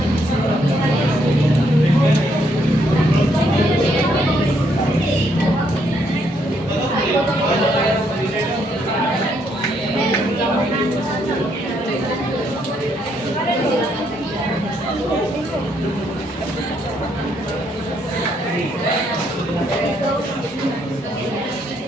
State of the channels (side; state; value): both; normal; correlation 0.72